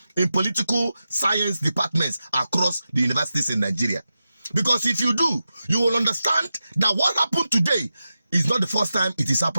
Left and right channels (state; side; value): inverted; both; correlation -0.92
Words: in political science departments across the universities in Nigeria. Because if you do, you will understand that what happened today is not the first time it is